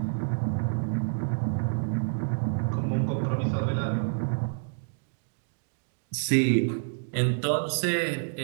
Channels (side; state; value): left; silent; digital silence